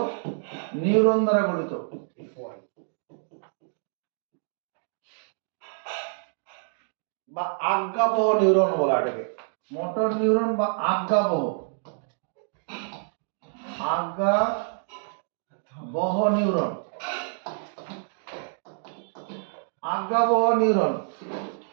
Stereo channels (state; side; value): silent; left; digital silence